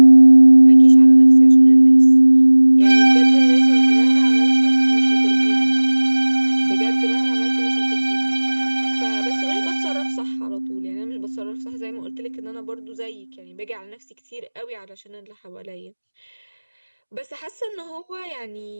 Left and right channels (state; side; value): inverted; both; correlation -1.00